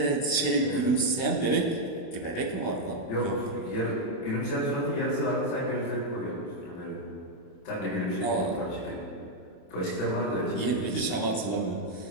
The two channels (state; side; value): late; right; 28 ms